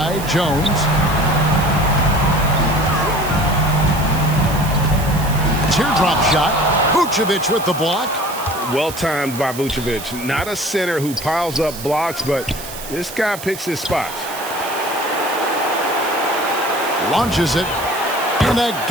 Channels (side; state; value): right; noise; hiss, 12 dB below the sound